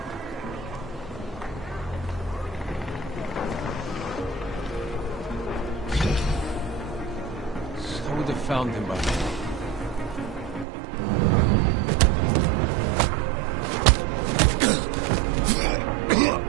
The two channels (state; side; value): drops out; left; at 10.7 s